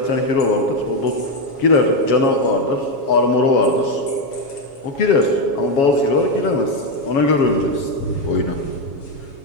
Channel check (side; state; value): right; late; 7.2 ms